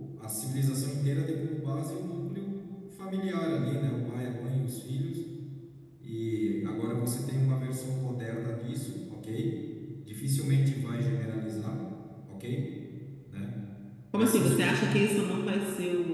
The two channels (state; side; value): identical; both; correlation 1.00